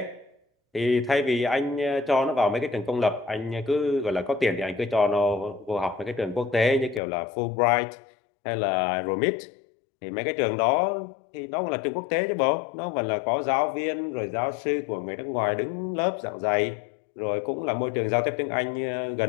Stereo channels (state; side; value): drops out; right; at 7.0 s